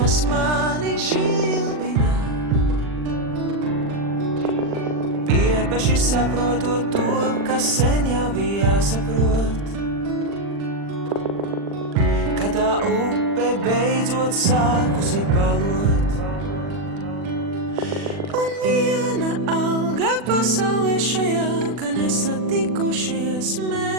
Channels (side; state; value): left; late; 40 ms